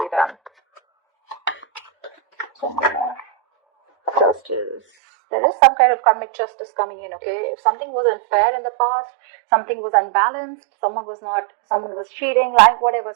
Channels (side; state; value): left; drops out; at 4.8 s